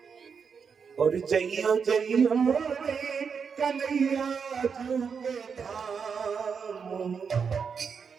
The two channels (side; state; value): left; quieter; 6.1 dB